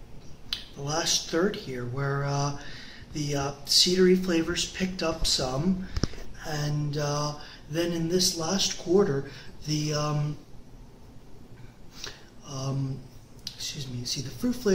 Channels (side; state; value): both; identical; correlation 1.00